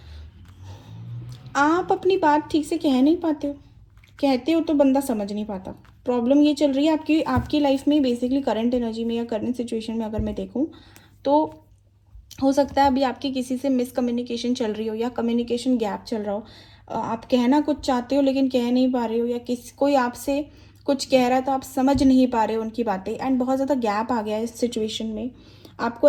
आप अपनी बात ठीक से कह नहीं पाते हो, कहते हो तो बंदा समझ नहीं पाता। प्रॉब्लम ये चल रही है आपकी आपकी लाइफ में, बेसिकली करंट एनर्जी में या करंट सिचुएशन में अगर मैं देखूँ तो हो सकता है अभी आपकी किसी से मिसकम्युनिकेशन चल रही हो या कम्युनिकेशन गैप चल रहा हो। आप कहना कुछ चाहते हो लेकिन कह नहीं पा रहे हो, या कोई आपसे कुछ कह रहा है तो आप समझ नहीं पा रहे हो उनकी बातें, एंड बहुत ज़्यादा गैप आ गया है इस सिचुएशन में। आपको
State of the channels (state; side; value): identical; both; correlation 1.00